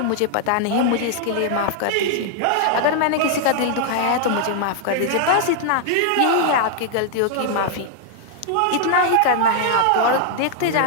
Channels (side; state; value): both; different; correlation 0.00